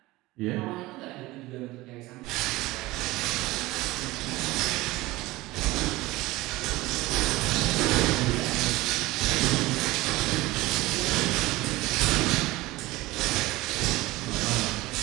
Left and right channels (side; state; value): left; quieter; 19.5 dB